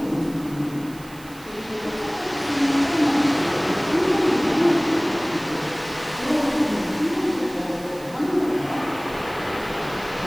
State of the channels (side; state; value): right; noise; hiss, 21 dB below the sound